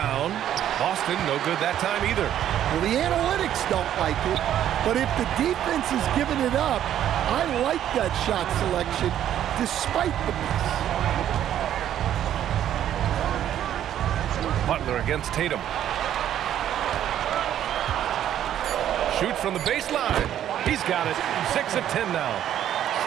Boston, no good that time either. Well, the analytics don't like it, but if the defense is giving it up, I like that shot selection, despite the miss. Butler against Tatum. Shoot from the baseline. He's got it. 6 of 10 now.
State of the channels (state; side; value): quieter; left; 11.0 dB